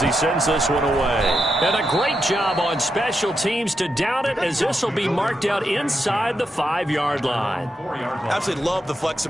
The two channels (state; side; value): normal; both; correlation 0.85